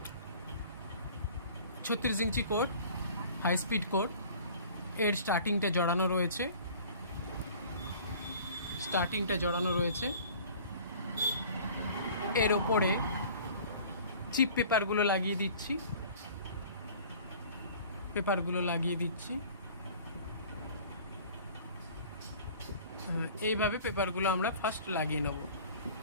36 ইঞ্চি কোড, হাই স্পিড কোড। এর স্টার্টিংটা জড়ানো রয়েছে। এর ওপরে চিপ পেপারগুলো লাগিয়ে দিচ্ছি। এইভাবে পেপারগুলো আমরা ফার্স্ট লাগিয়ে নেব।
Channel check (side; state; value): both; inverted; correlation -0.46